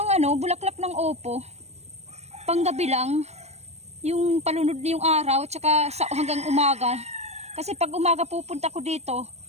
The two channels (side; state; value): left; late; 0.31 ms